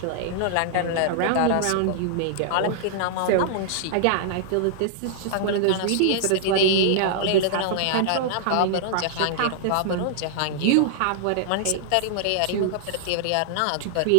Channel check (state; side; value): different; both; correlation -0.01